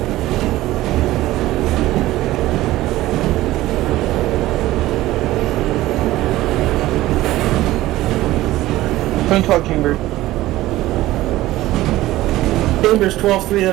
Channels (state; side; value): quieter; left; 16.4 dB